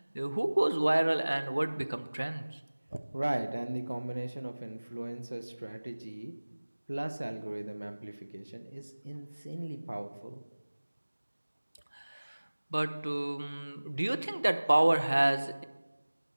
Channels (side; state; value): both; inverted; correlation -1.00